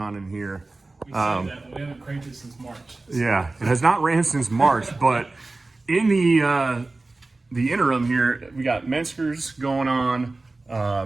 in here. We say that, but we haven't cranked it since March. Yeah, it has not ran since March, but in the interim here, we got Menskers going on,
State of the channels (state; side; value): quieter; left; 3.3 dB